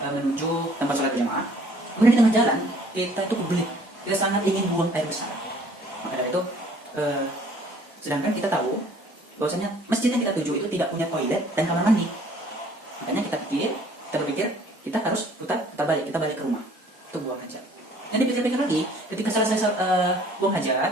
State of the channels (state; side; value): normal; both; correlation 0.56